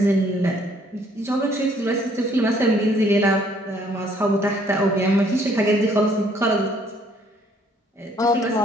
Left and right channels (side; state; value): both; normal; correlation 0.63